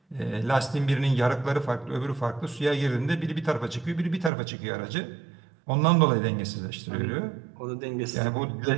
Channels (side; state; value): left; drops out; at 4.3 s